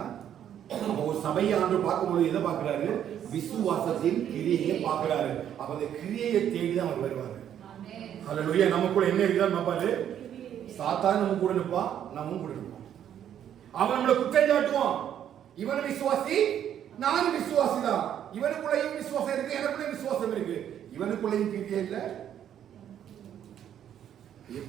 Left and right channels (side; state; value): left; quieter; 10.0 dB